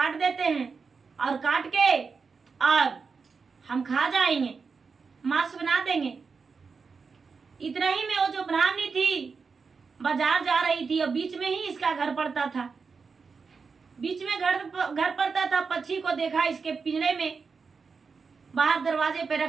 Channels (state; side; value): quieter; left; 5.1 dB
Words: देते हैं और काट के और हम खा जाएंगे, मांस बना देंगे। इतना ही में वो जो ब्राह्मणी थी बाजार जा रही थी और बीच में ही इसका घर पड़ता था। बीच में घर पड़ता था। पक्षी को देखा इसके पिंजरे में बाहर दरवाजे पे